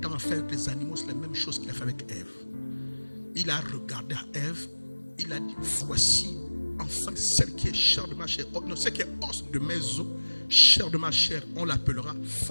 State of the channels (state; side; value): inverted; both; correlation -1.00